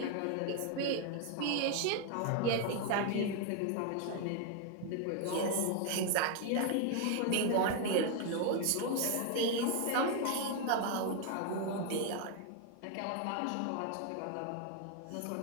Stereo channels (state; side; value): different; both; correlation 0.01